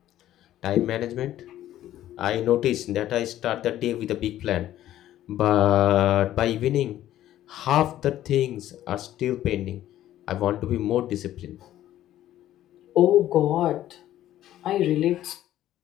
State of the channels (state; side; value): quieter; right; 13.0 dB